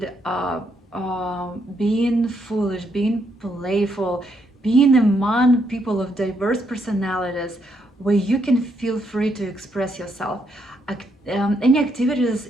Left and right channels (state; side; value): normal; both; correlation 0.76